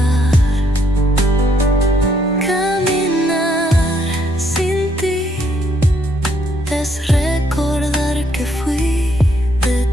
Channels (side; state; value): both; normal; correlation 0.72